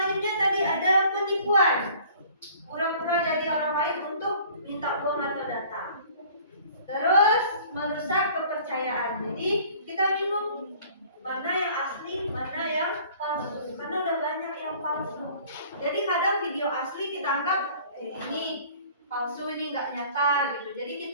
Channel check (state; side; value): inverted; both; correlation -0.51